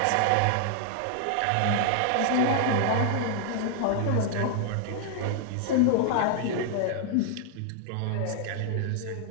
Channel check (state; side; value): different; both; correlation 0.00